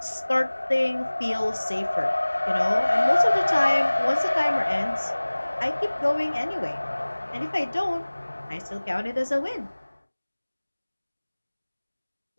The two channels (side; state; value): both; inverted; correlation -1.00